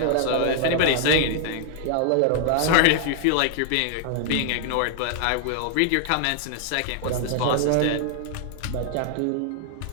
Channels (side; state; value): both; different; correlation 0.00